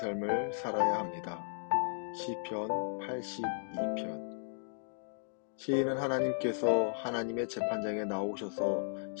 살아야 합니다. 시편 82편. 시인은 하나님께서 하나님의 재판장에 나오셔서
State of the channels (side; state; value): right; silent; digital silence